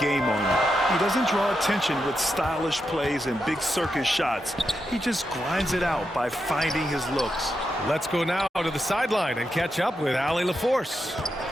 on you. He doesn't draw attention with stylish plays and big circus shots. He just grinds it out by finding his looks. Let's go now to the sideline and catch up with Allie LaForce.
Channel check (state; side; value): normal; both; correlation 0.86